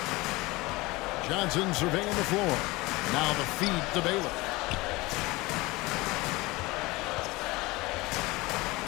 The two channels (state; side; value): quieter; right; 21.9 dB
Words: Johnson surveying the floor. Now the feed to Baylor.